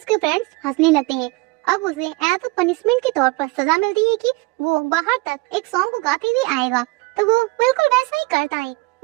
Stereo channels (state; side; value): quieter; left; 24.6 dB